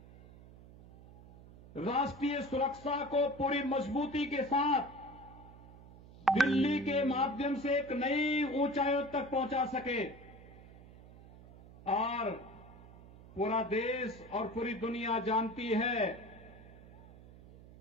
राष्ट्रीय सुरक्षा को पूरी मजबूती के साथ दिल्ली के माध्यम से एक नई ऊंचाइयों तक पहुंचा सके और पूरा देश और पूरी दुनिया जानती है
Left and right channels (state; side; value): noise; right; hum, 20 dB below the sound